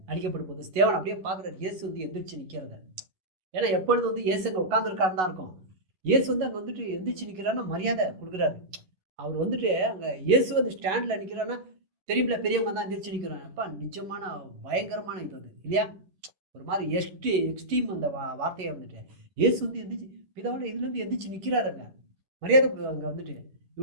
அடிக்கப்படும் போது ஸ்தேவான் அப்படியே பார்க்குறாரு, இயேசு வந்து எந்திரிச்சு நிற்கிறத. ஏன்னா எப்பொழுது வந்து இயேசு அங்கே உட்காந்துருக்காருன்னு தான் இருக்கும். இயேசு வந்து அங்கே வந்துட்டு எந்திரிச்சு நிற்கிறான்னு மரியாதை கொடுக்குறாரு. அவர் வந்துட்டு அங்கே இயேசு வந்து ஸ்டாண்டில் நிற்கிறான்னா தெரியுமில்ல, பெரியவங்க தான் எந்திரிச்சு நிற்கிறாங்க. அப்பா நிஜமான பயங்கரமான இது அது இல்லையா? ஒரு மாதிரி எக்ஸ்ட்ரீம் அந்த வார்த்தையை வந்துட்டு இயேசு வந்து எந்திரிச்சு பிதாவோட இதுலேருந்து எந்திரிச்சு நிற்கிறாருங்க, மரியாதை அங்கே வந்துட்டு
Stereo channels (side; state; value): left; late; 11 ms